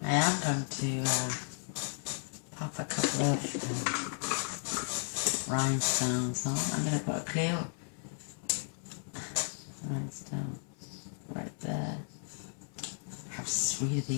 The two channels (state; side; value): silent; right; 55 dB below the other